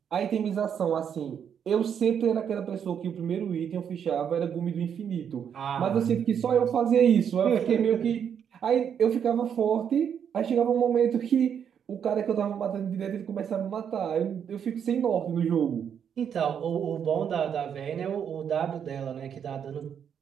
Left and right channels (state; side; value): quieter; left; 8.1 dB